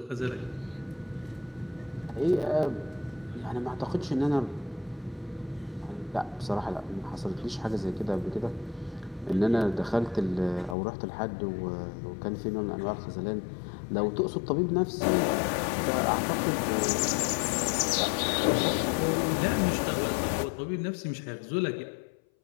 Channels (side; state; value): right; drops out; at 10.8 s